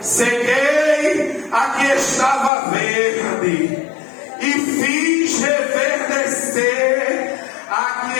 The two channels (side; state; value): right; drops out; at 2.5 s